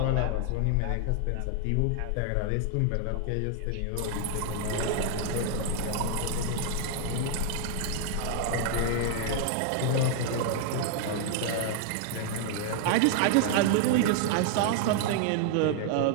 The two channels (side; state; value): both; different; correlation 0.00